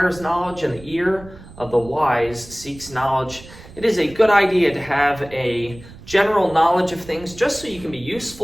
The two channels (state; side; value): noise; right; rumble, 19 dB below the sound